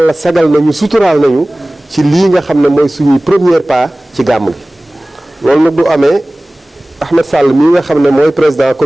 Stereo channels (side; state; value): both; normal; correlation 0.98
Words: sagal nañu suturaal nañu ci lii nga xam ne mooy suñuy premier pas ci gàmm gi. loolu nag du amee Ahmed Sall mii nga xam ne mooy président